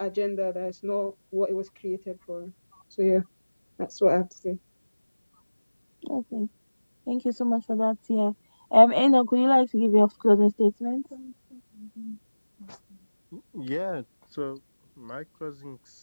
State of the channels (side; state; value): both; inverted; correlation -1.00